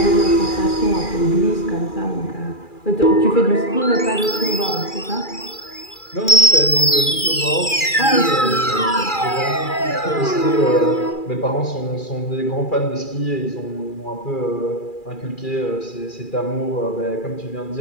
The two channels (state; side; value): late; right; 2.4 ms